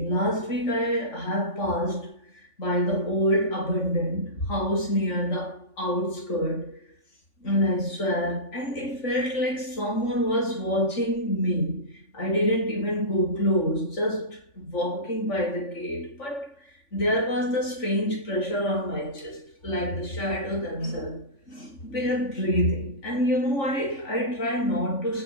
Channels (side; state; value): right; late; 3.5 ms